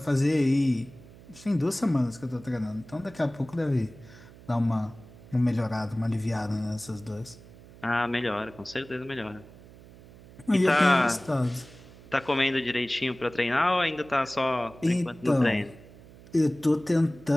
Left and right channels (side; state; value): right; noise; hum, 21 dB below the sound